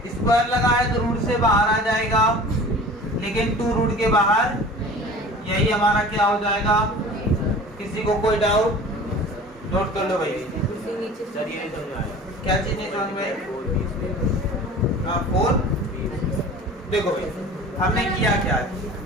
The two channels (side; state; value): both; normal; correlation 0.41